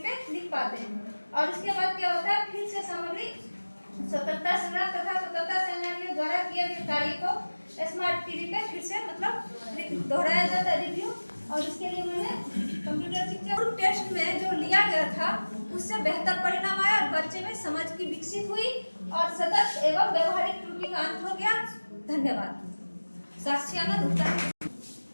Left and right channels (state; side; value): inverted; both; correlation -1.00